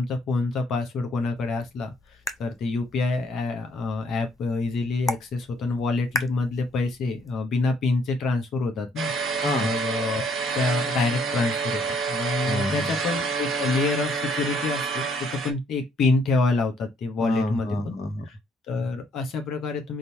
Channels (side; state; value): both; normal; correlation 0.66